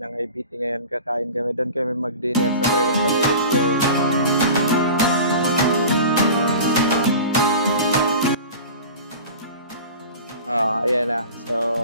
IBT ngayon. Kakain kami. Doon kami mag-dinner. Sabayan kami. Let's go. Ayan na. So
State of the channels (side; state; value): both; inverted; correlation -0.36